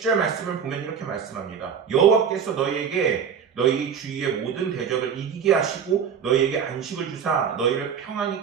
말씀을 보면 이렇게 말씀합니다. 여호와께서 너희에게 너희 주위의 모든 대적을 이기게 하시고 너희에게 안식을 주사 너희를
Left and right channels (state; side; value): quieter; left; 7.3 dB